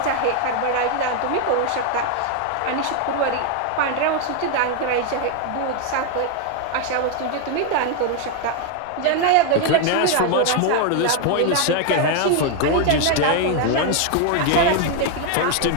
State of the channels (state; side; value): different; both; correlation 0.01